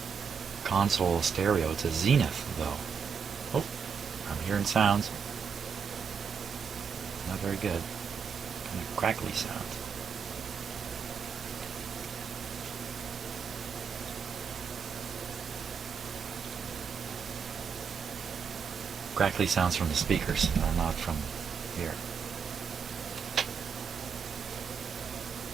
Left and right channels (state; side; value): quieter; left; 6.4 dB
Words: console stereo. It's a Zenith though. Oh, I'm hearing sounds. Not very good. Kind of crackly sounds. crackly sounds from the speakers, not from here.